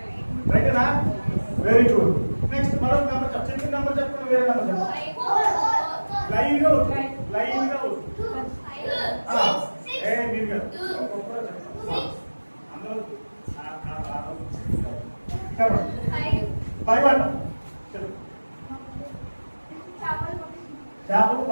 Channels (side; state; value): both; inverted; correlation -1.00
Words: రైటేనా? Very good. నెక్స్ట్ మరొక నెంబర్ చెప్పండి. నెంబర్ చెప్పండి, వేరే నెంబర్ చెప్పండి. లైన్ గా లైన్ గా మీరు అందరూ చెప్పండి. 5 అంట. చేపలు